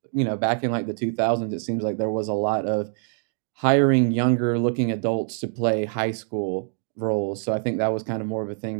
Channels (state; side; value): silent; left; digital silence